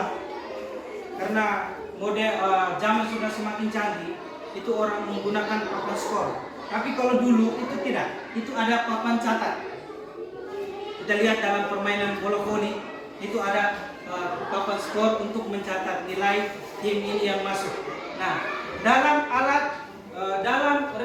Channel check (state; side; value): identical; both; correlation 1.00